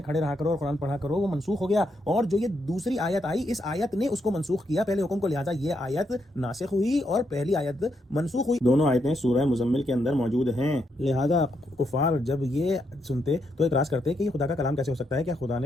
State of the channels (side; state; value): both; normal; correlation 0.79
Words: کھڑے رہا کرو اور قرآن پڑھا کرو وہ منسوخ ہو گیا، اور جو یہ دوسری آیت آئی اس آیت نے اس کو منسوخ کیا پہلے حکم کو، لہذا یہ آیت ناسخ ہوئی اور پہلی آیت منسوخ ہوئی۔ دونوں آیتیں سورہ مزمل کے اندر موجود ہیں۔ لہذا کفار جب یہ سنتے تو اعتراض کرتے کہ یہ خدا کا کلام کیسے ہو سکتا ہے؟ کہ خدا